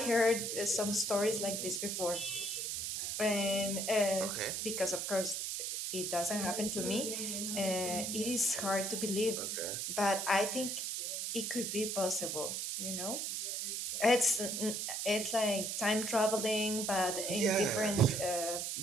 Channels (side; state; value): right; noise; hiss, 2 dB below the sound